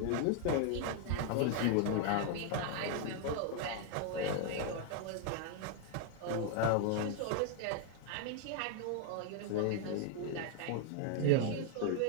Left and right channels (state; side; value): different; both; correlation 0.00